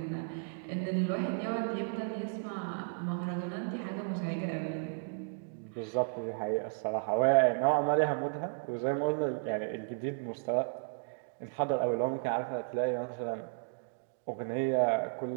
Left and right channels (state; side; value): silent; left; digital silence